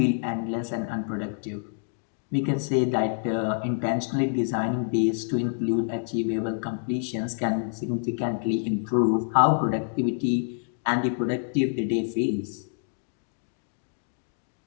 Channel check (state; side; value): silent; right; digital silence